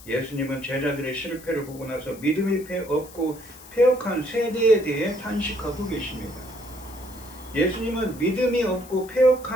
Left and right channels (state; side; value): noise; left; hiss, 19 dB below the sound